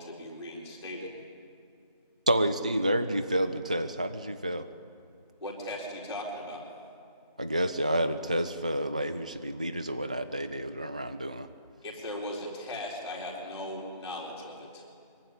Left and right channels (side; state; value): both; inverted; correlation -0.73